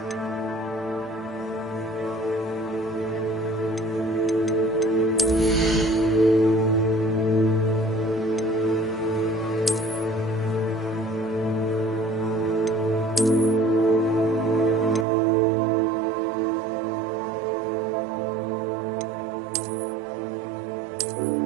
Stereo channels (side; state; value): left; drops out; at 15.1 s